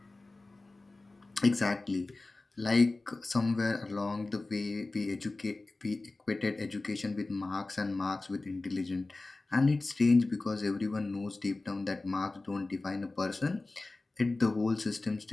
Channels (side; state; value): right; quieter; 3.2 dB